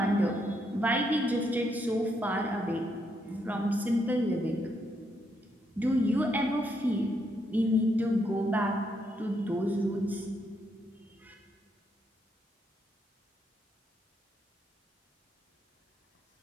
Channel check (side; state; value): both; normal; correlation 0.77